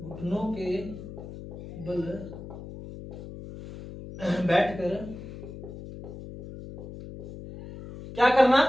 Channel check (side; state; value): left; noise; hum, 12 dB below the sound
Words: के बल बैठकर क्या करना,